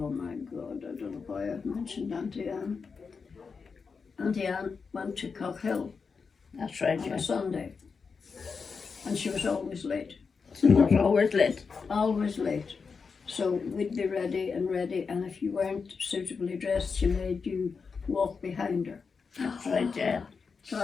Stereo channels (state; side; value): quieter; right; 5.3 dB